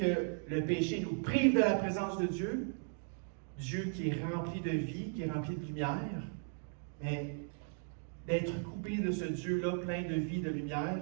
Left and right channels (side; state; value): left; silent; 53 dB below the other